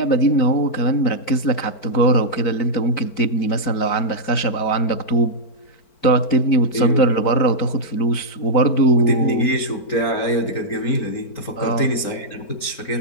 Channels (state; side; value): late; right; 4.4 ms